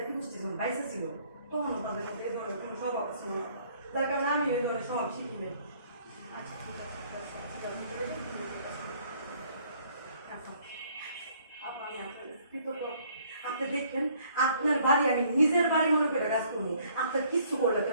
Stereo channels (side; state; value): both; inverted; correlation -0.61